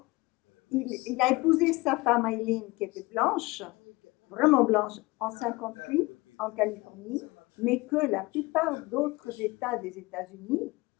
il a épousé sa femme Eileen qui était blanche, vraiment blanche, en 58 en Californie, mais que la plupart d'autres États des États-Unis,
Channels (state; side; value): quieter; right; 22.8 dB